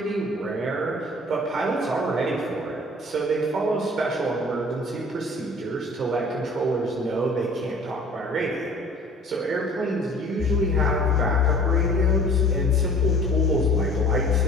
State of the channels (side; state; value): both; normal; correlation 0.49